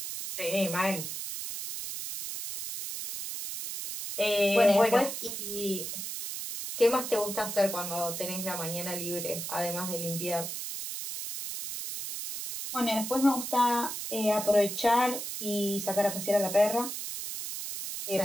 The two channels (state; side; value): noise; right; hiss, 6 dB below the sound